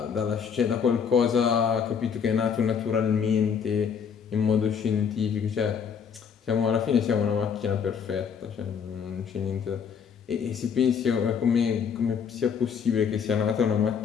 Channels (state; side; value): quieter; right; 6.9 dB